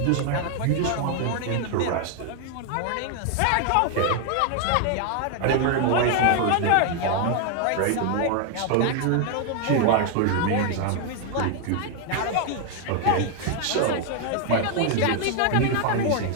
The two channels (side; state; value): both; different; correlation 0.00